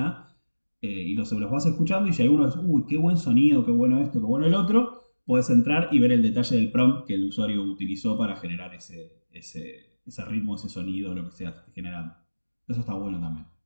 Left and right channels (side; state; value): both; inverted; correlation -1.00